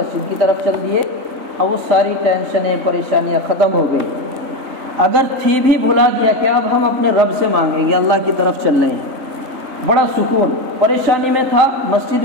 کی طرف چل دیے، اب وہ ساری ٹینشنیں پریشانیاں ختم ہو گئی۔ اگر تھی بھی بھلا گیا کہ اب ہم اپنے رب سے مانگیں گے، اللہ کی طرف چل رہے ہیں، بڑا سکون، پریشانی میں تھا، مسجد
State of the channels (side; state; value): left; late; 3.9 ms